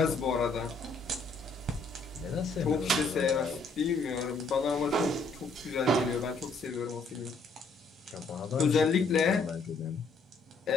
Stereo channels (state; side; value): quieter; right; 3.5 dB